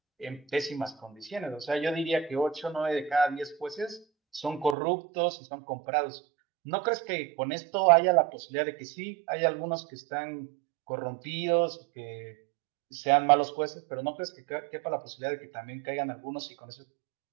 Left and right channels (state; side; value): drops out; left; at 4.8 s